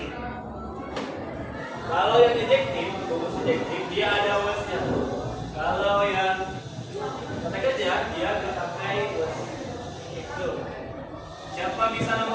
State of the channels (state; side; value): identical; both; correlation 1.00